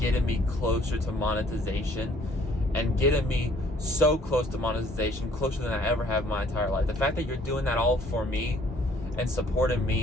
me closer to monetization and getting me so close to monetization, closer than I ever have in my entire life. The fact that you're doing that all for me and supporting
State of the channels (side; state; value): both; normal; correlation 0.60